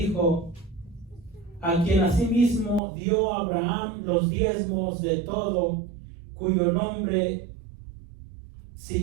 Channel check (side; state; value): left; drops out; at 2.8 s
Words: a quien asimismo dio a Abraham los diezmos de todo, cuyo nombre